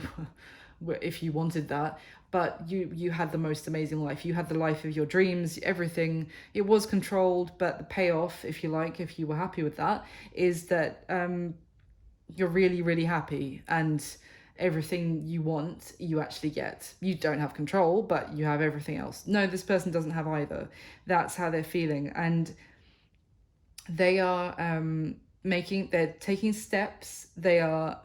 were, if you wanted that, but you had the most amazing life. You had the life of your dreams, everything. It was controlled, but the payoff, if you like, if you were happy with that, is that you're really, really happy, and everything you want, you actually get. You don't have control, but you have everything else. No, this person doesn't have either. That's how they're feeling. And they are they're taking steps. They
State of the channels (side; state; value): both; identical; correlation 1.00